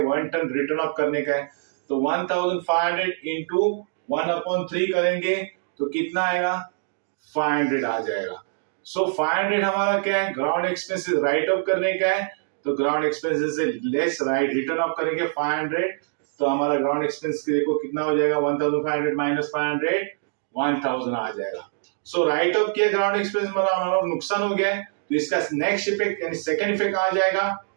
1/3 रिटर्न ऑफ करने का है, तो 1500 इंटू 1/3 करेंगे तो कितना आएगा 500 आ जाएगा। सो 500 हमारा क्या है, ग्राउंड एक्सपेंसेस राइट ऑफ करने का है, तो ग्राउंड एक्सपेंसेस से लेस राइट रिटर्न ऑफ करेंगे 500, तो हमारा ग्राउंड एक्सपेंस देखो कितना हो जाएगा 1500 माइनस 500, 1000 आ जाएगा। सो राइट ऑफ किया ग्राउंड एक्सपेंस हमारा नुकसान हो गया है, तो इसका नेक्स्ट इफेक्ट यानी सेकंड इफेक्ट आ जाएगा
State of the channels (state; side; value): silent; left; digital silence